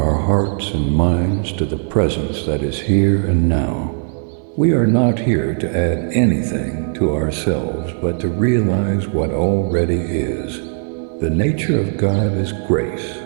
hearts and minds to the presence that is here and now. We are not here to add anything to ourselves, but to realize what already is. The nature of God is grace,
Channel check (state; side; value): silent; left; 57 dB below the other